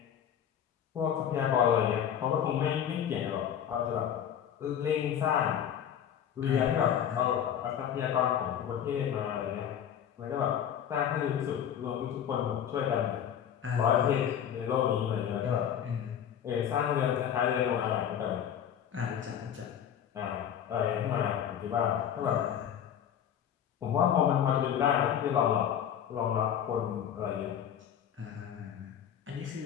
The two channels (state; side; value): quieter; right; 9.3 dB